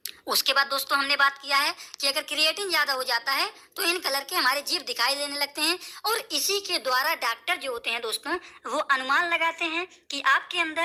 उसके बाद दोस्तों हमने बात किया है कि अगर क्रिएटिन ज्यादा हो जाता है तो इन कलर के हमारे जीभ दिखाई देने लगते हैं और इसी के द्वारा डॉक्टर जो होते हैं दोस्तों वो अनुमान लगाते हैं कि आपके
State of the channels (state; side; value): identical; both; correlation 1.00